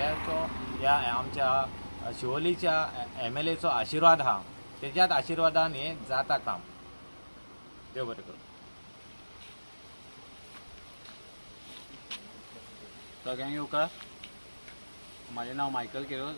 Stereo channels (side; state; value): both; inverted; correlation -1.00